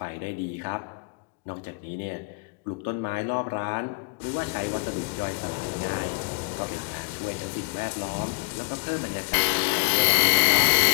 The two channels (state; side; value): quieter; right; 32.7 dB